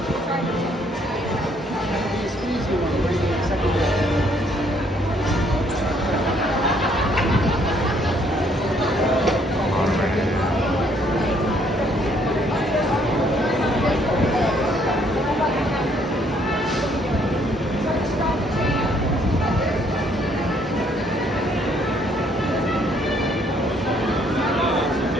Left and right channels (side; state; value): both; normal; correlation 0.66